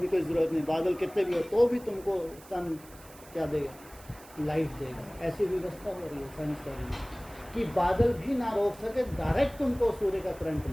कोई ज़रूरत नहीं। बादल कितने भी हो तो भी तुमको सन क्या देगा? लाइट देगा। ऐसी व्यवस्था हो रही है साइंसदानी में कि बादल भी ना रोक सके, डायरेक्ट तुमको सूर्य का करंट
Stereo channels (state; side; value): noise; right; hiss, 21 dB below the sound